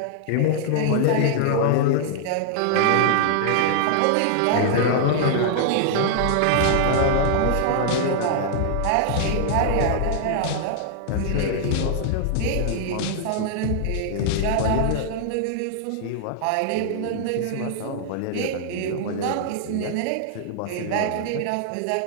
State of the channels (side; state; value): both; different; correlation -0.01